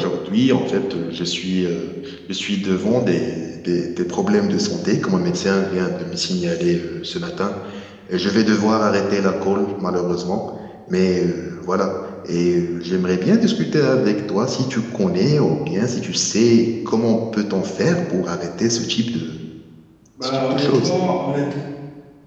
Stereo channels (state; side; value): identical; both; correlation 1.00